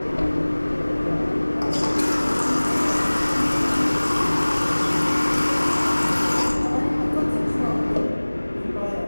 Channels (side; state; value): both; inverted; correlation -1.00